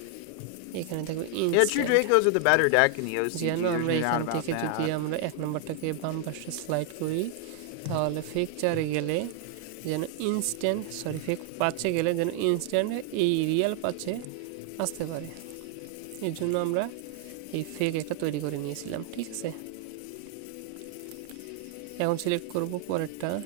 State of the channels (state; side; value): different; both; correlation 0.00